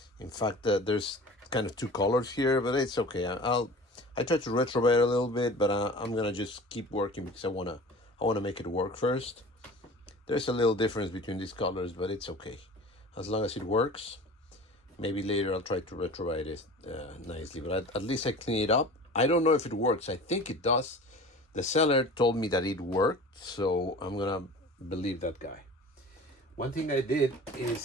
In fact, there's kind of two colors here, but it's okay. I try to retrobate a little bit, but I'm gonna just keep working because I wanna make it work first. There's a little difference between these colors, but it's okay as long as it works. Maybe later I'll try to retrobate it nicely, but at least I clean it up. I don't know if it works. I think it does. The seller told me that it worked, so I'm gonna believe that guy. One thing I did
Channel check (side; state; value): both; normal; correlation 0.39